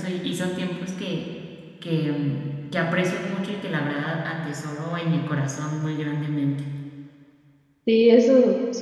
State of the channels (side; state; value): both; identical; correlation 1.00